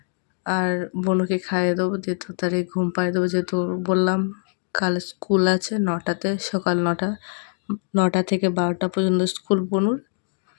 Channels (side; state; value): right; silent; 56 dB below the other